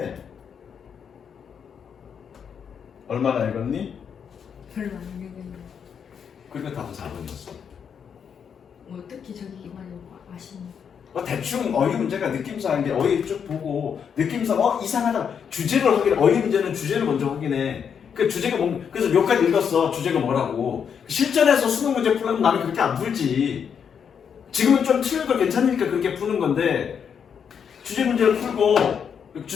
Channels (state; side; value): quieter; right; 7.3 dB